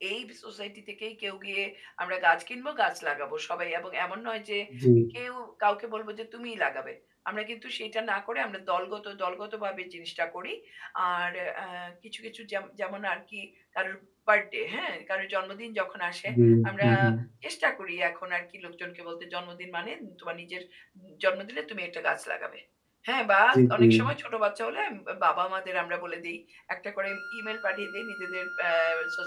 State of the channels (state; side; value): identical; both; correlation 1.00